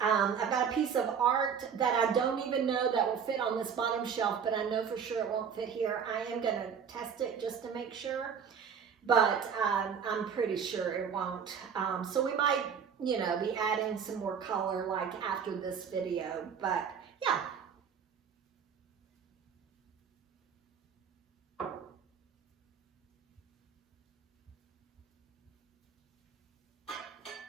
I've got a piece of art that I don't even know that will fit on this bottom shelf, but I know for sure it won't fit here. I am going to test it just to make sure, but I'm pretty sure it won't. So we might, you know, be adding some more color like after this video, but yeah.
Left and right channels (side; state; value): left; quieter; 7.1 dB